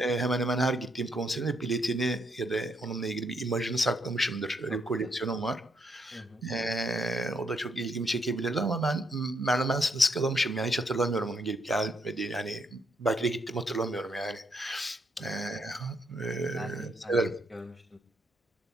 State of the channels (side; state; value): both; normal; correlation 0.75